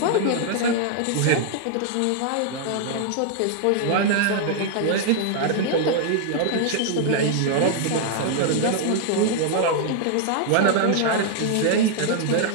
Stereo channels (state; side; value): different; both; correlation -0.01